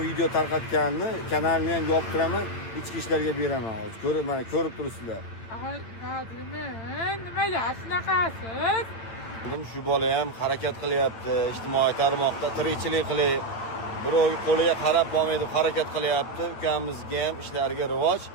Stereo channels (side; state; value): right; late; 8.9 ms